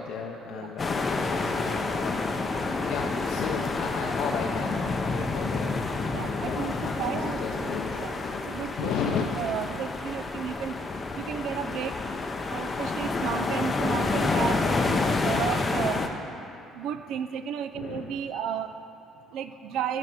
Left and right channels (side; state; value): both; normal; correlation 0.71